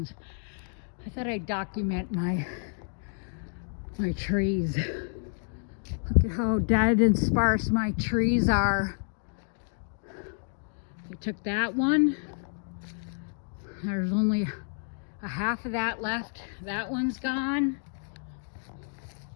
I thought I'd document my trees. Look at how dead and sparse my trees are. I took that one. There's only a half of that left. That one's gone.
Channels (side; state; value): right; silent; 58 dB below the other